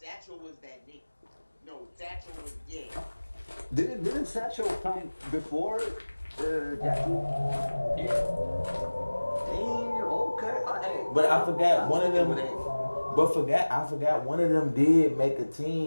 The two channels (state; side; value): inverted; both; correlation -1.00